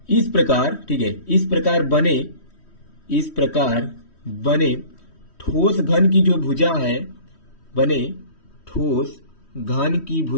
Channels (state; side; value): late; right; 3.1 ms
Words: इस प्रकार, ठीक है, इस प्रकार बने ठोस घन की जो भुजा है, बने ठोस घन की